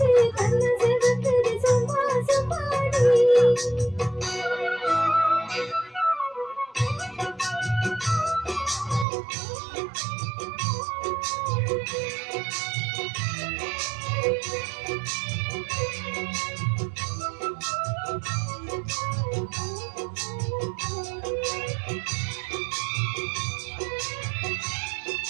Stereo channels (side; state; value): left; drops out; at 9.1 s